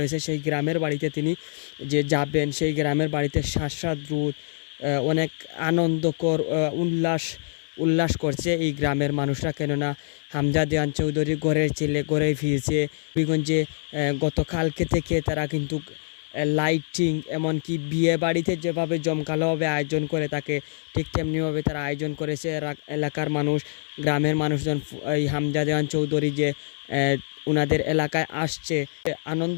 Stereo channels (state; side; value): silent; right; 57 dB below the other